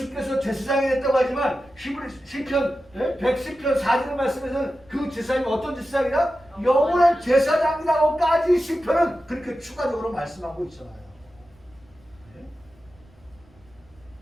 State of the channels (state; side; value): noise; right; rumble, 29 dB below the sound